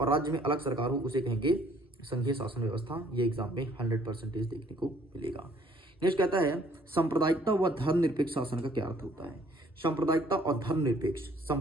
राज्य में अलग सरकार हो, उसे कहेंगे संघीय शासन व्यवस्था। ये एग्जाम में 100% देखने को मिलेगा। नेक्स्ट कहता है सांप्रदायिकता व धर्मनिरपेक्ष शासन का क्या अर्थ होता है। सांप्रदायिकता और धर्मनिरपेक्ष,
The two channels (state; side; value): normal; both; correlation 0.60